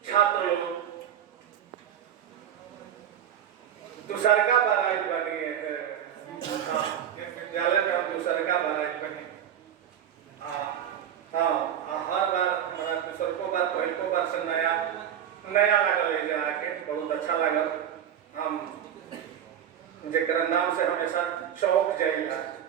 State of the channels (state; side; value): quieter; left; 9.7 dB